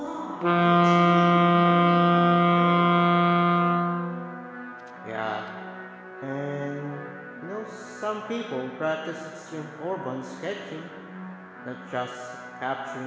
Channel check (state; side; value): identical; both; correlation 1.00